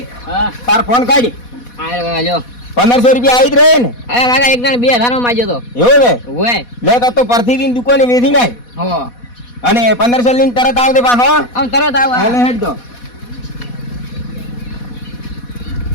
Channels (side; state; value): right; late; 4.1 ms